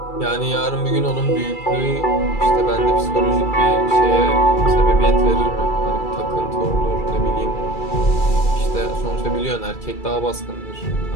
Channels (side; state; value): right; late; 2.3 ms